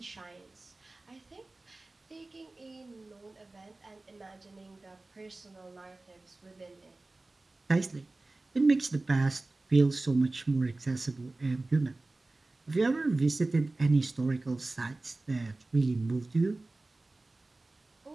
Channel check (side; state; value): left; quieter; 3.1 dB